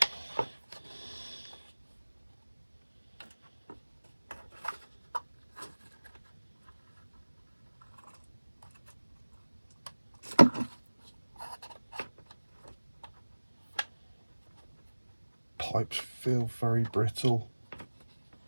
Pipes feel very brittle.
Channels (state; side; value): inverted; both; correlation -1.00